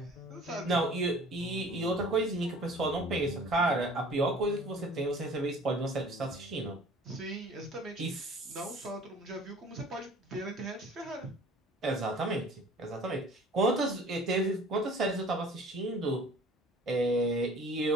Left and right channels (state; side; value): normal; both; correlation 0.48